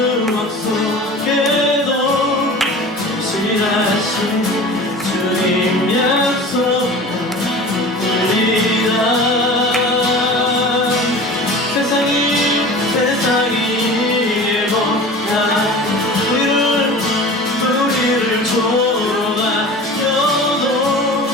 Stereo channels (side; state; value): both; normal; correlation 0.38